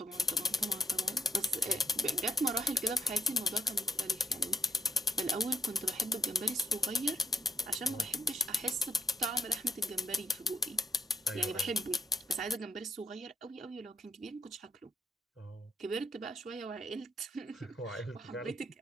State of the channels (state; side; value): normal; both; correlation 0.73